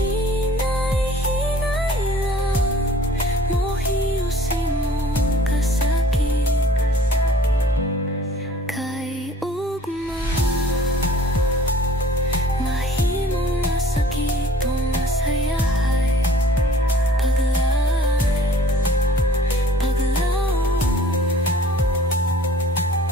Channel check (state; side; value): normal; both; correlation 0.52